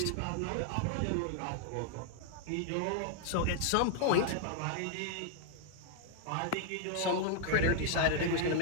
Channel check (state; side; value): different; both; correlation 0.00